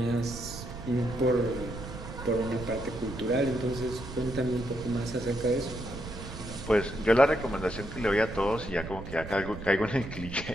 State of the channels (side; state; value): right; noise; rumble, 10 dB below the sound